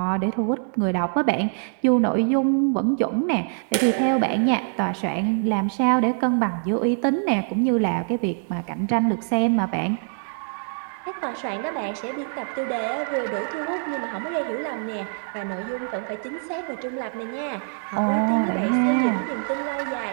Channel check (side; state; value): left; silent; 62 dB below the other